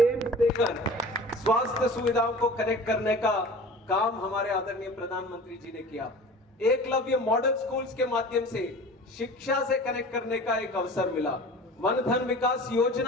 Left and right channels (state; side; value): normal; both; correlation 0.40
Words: एम्स देकर स्वास्थ्य सुविधाओं को कनेक्ट करने का काम हमारे आदरणीय प्रधानमंत्री जी ने किया। एकलव्य मॉडल स्कूल्स के माध्यम से शिक्षा से कनेक्ट करने का एक अवसर मिला। वन धन विकास